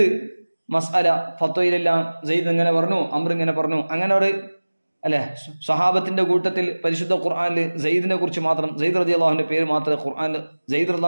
മസ്അല ഫത്വയിലെല്ലാം സെയ്ദ് ഇങ്ങനെ പറഞ്ഞു, അമ്ർ ഇങ്ങനെ പറഞ്ഞു, അങ്ങനെ ഒരു അല്ലെ സ്വഹാബത്തിന്റെ കൂട്ടത്തിൽ പരിശുദ്ധ ഖുർആനിൽ സെയ്ദിനെ കുറിച്ച് മാത്രം, സെയ്ദ് റളിയല്ലാഹുവിന്റെ പേര് മാത്രമേ ഖുർആനിൽ സെയ്ദ്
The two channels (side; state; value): both; inverted; correlation -1.00